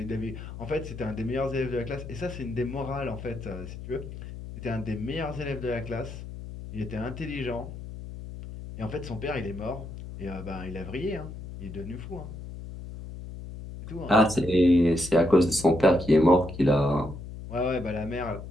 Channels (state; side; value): noise; left; hum, 11 dB below the sound